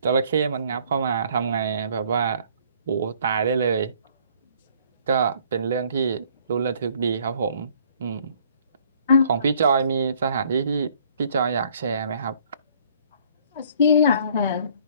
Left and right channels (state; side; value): inverted; both; correlation -0.59